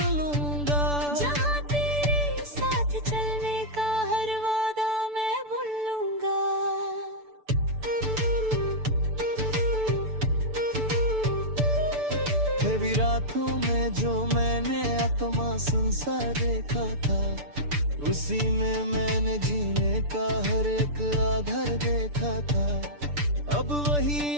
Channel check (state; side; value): late; left; 6.9 ms